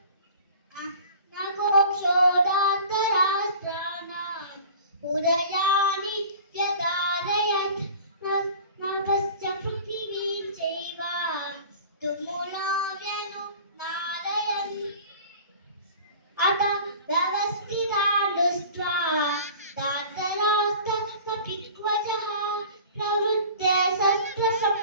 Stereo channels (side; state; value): both; inverted; correlation -0.42